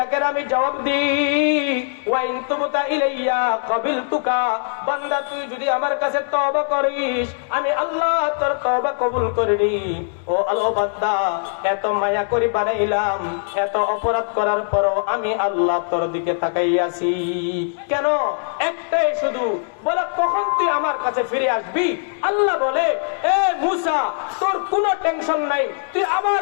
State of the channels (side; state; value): right; silent; digital silence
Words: আমি জবাব দিই। ওয়া ইন তুবতা ইলাইয়া ক্বাবিলতুকা, বান্দা তুই যদি আমার কাছে তওবা করিস আমি আল্লাহ তোর তওবা কবুল করিনি। ও আল্লাহ বান্দা, এত মায়া করি বানাইলাম, এত অপরাধ করার পরও আমি আল্লাহ তোর দিকে তাকাইয়াছি কেন? একটাই শুধু, বলে কখন তুই আমার কাছে ফিরে আসবি? আল্লাহ বলে, এ মুসা তোর কোনো টেনশন নাই, তুই